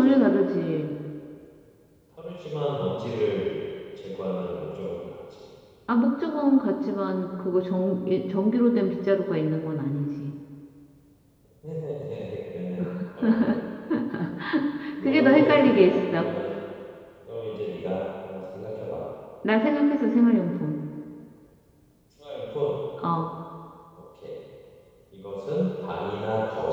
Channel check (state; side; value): identical; both; correlation 1.00